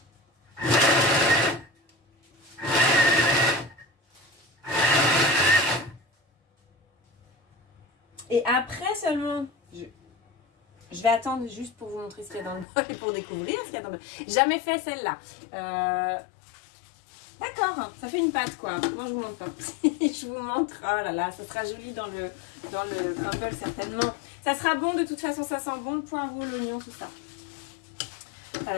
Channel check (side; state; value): right; drops out; at 12.7 s